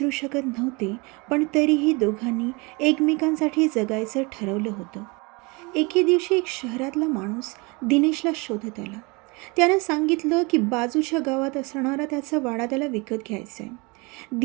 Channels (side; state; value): left; quieter; 27.6 dB